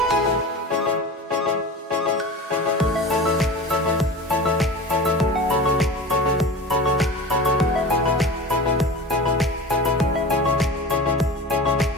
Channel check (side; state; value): both; normal; correlation 0.33